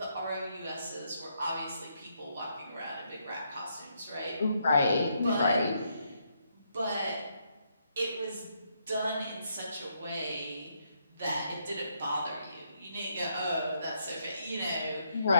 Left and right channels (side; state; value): both; inverted; correlation -0.76